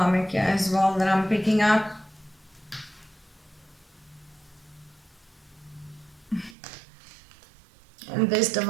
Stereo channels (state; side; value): drops out; left; at 6.6 s